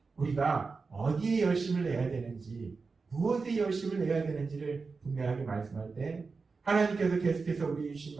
우리가 어디에 열심을 내야 되는지, 무엇에 열심을 내야 되는지를 분명하게 말씀할 때 하나님께서 계속해서 우리 주신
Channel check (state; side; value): quieter; left; 4.5 dB